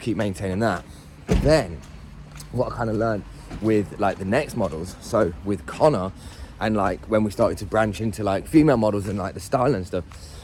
keep maintaining that. But then, what I kind of learned with like the next models, so with Connor, and like when we started to branch into like female models and like the style and stuff,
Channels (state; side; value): identical; both; correlation 1.00